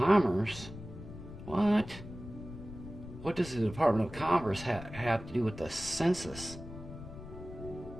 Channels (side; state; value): left; noise; rumble, 13 dB below the sound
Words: What? What does the Department of Commerce have to do with the census?